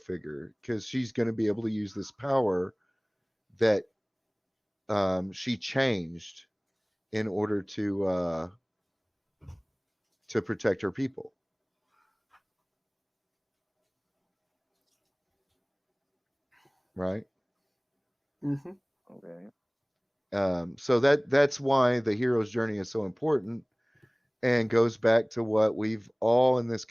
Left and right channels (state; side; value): identical; both; correlation 1.00